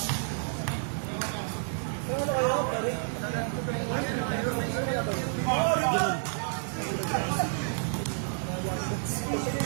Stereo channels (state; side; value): silent; left; digital silence